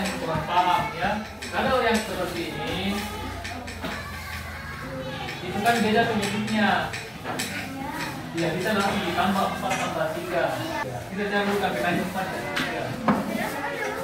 kurang paham ya. Kalau yang seperti ini, itu kan beda penyebutnya. Ya bisa langsung ditambah 4 tambah 3. Kita campurkan kali 4 dan 3.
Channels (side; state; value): both; identical; correlation 1.00